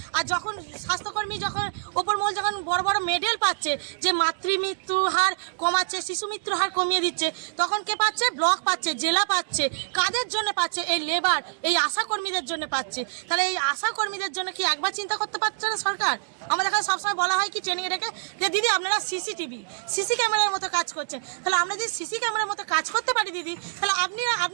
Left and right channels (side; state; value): left; silent; digital silence